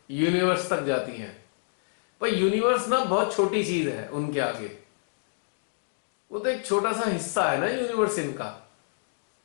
यूनिवर्स तक जाती हैं। पर यूनिवर्स ना बहुत छोटी चीज है उनके आगे। वो तो एक छोटा सा हिस्सा है ना यूनिवर्स इनका।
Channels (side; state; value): right; silent; digital silence